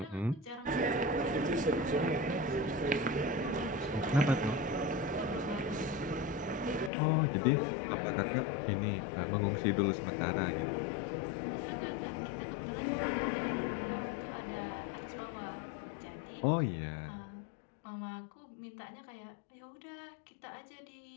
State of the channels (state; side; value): drops out; right; at 6.9 s